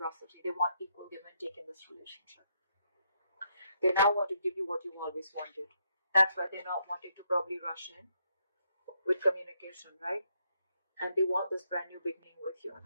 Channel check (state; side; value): inverted; both; correlation -0.76